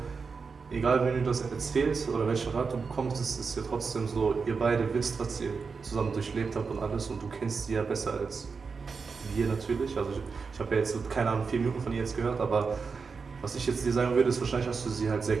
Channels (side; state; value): left; quieter; 5.1 dB